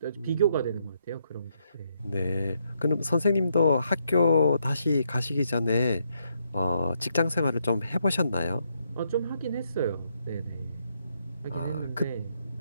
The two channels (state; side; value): inverted; both; correlation -0.76